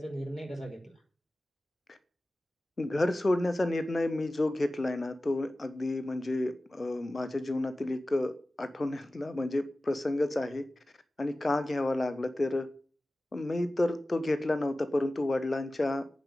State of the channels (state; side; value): normal; both; correlation 0.96